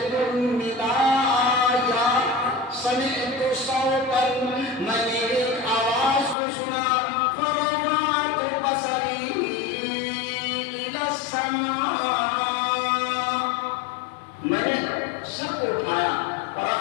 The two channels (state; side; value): drops out; right; at 6.4 s